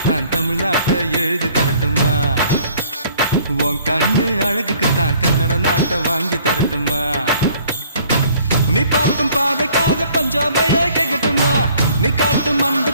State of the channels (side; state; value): both; inverted; correlation -0.57